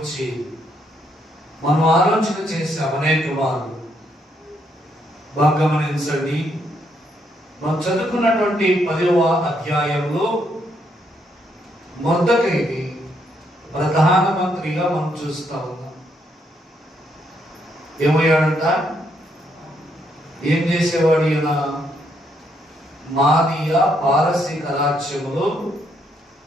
మనం ఆలోచన చేశాం అనేక మార్లు. బాగా గమనించండి. మనం చదువుకున్నటువంటి 10వ అధ్యాయంలో మొర్దెకైని ప్రధానమంత్రిగా మనం చూస్తా ఉన్నాం. ఏమయ్యాడంట? ఏం చేసేవాడు ఈయన? మాదీయ పారసీక రాజ్యములో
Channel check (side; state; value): both; normal; correlation 0.74